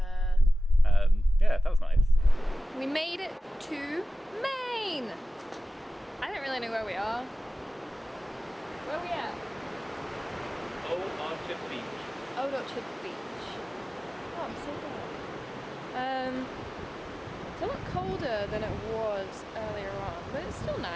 Yeah, that was nice. We made it to Maine. I don't really know where we are. Where are we at? Old Orchard Beach. Old Orchard Beach. Oh, I'm so glad. It's a lot colder than it was earlier on, but it's still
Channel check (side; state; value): both; normal; correlation 0.96